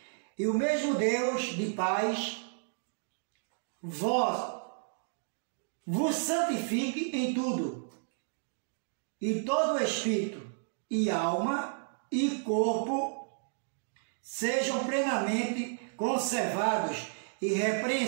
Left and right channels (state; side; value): silent; left; digital silence